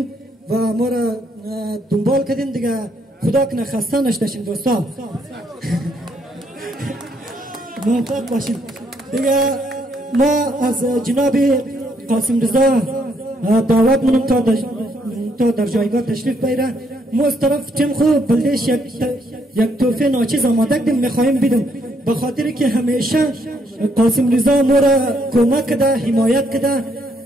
و ما را دنبال کردین دیگه خدا کنه خسته نشدشین دوستان موفق باشین دیگه ما از جناب قاسم رضا دعوت منم تا در جایگاه تشریف بیاره ما از طرف تیم خوب بلدش یک توفه ناچیز آماده کردیم میخواهیم بیدم به خاطر که همیشه قاسم رضا ما را کمک کده حمایت کده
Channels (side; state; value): both; normal; correlation 0.72